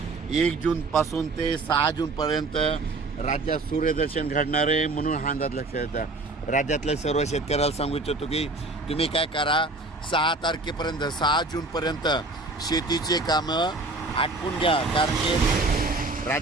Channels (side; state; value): left; quieter; 3.2 dB